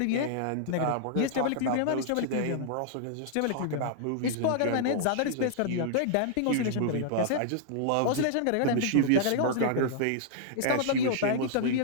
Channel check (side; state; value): both; different; correlation -0.01